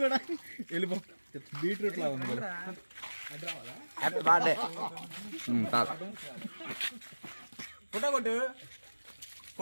బీట్రూట్ లాగా ఉంది. Happy birthday. ఫోటో కొట్టు,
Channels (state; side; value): inverted; both; correlation -1.00